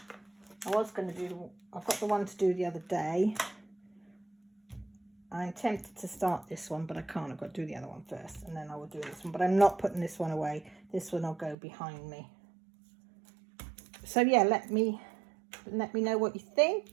I was going to do, I've got the one to do the other day. I'm tempted to start this one, but I can't. I've got to do the other one first, and then I will do this one. But I'm not putting this one away. This one will go behind me. So yeah, let me know what you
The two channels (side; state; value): left; drops out; at 11.6 s